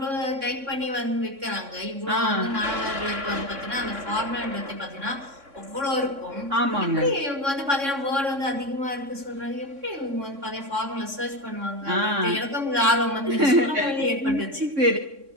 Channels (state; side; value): late; left; 3.6 ms